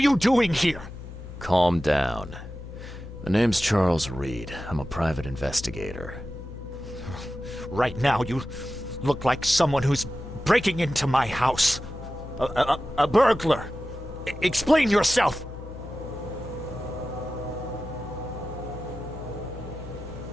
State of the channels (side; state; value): left; noise; hum, 12 dB below the sound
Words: doing here? Calm down. The name's Charles Reed. I'm a private investigator. Right now, you look like someone who's breaking into my house. A burglar. Explain yourself.